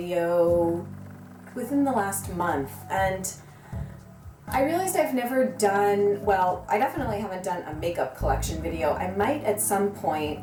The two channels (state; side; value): identical; both; correlation 1.00